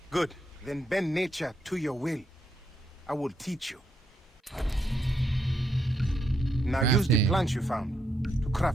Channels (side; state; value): both; normal; correlation 0.79